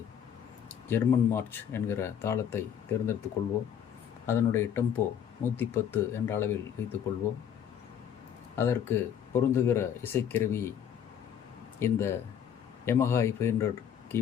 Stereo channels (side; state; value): right; quieter; 8.9 dB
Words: ஜெர்மன் மார்ச் என்கிற தாளத்தை தேர்ந்தெடுத்துக் கொள்வோம். அதனுடைய டெம்போ 110 என்ற அளவில் வைத்துக்கொள்வோம். அதற்கு பொருந்துகிற இசைக்கருவி இந்த Yamaha i500